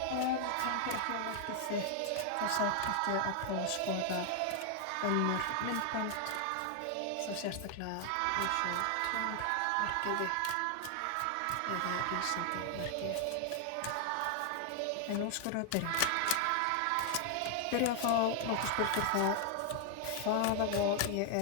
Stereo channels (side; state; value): both; different; correlation 0.00